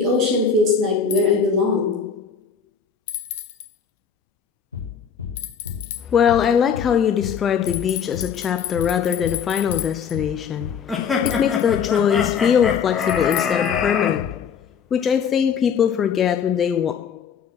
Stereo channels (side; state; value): right; quieter; 7.0 dB